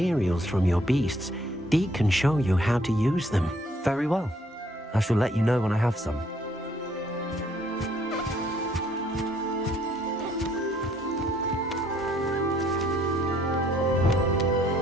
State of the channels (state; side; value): normal; both; correlation 0.65